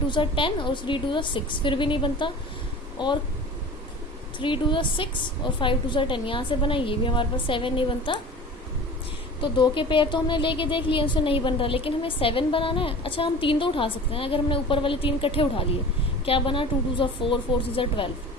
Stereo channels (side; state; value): both; normal; correlation 0.38